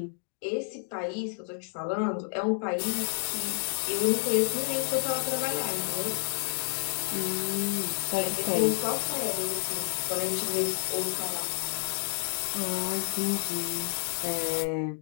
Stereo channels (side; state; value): right; silent; 56 dB below the other